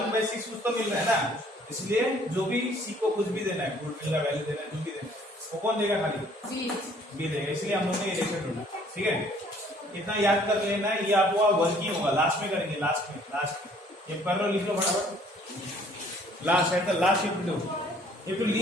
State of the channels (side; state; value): both; normal; correlation 0.59